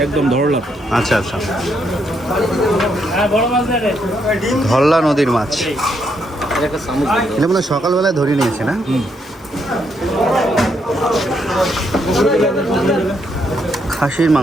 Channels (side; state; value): both; normal; correlation 0.76